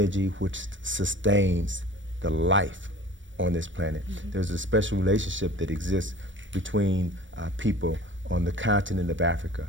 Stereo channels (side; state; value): left; late; 0.56 ms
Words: which sustains the life on this planet. There's a special relationship that exists between people on the continent of Africa.